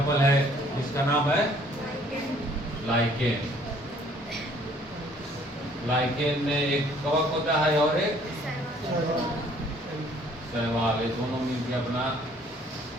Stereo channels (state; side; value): normal; both; correlation 0.59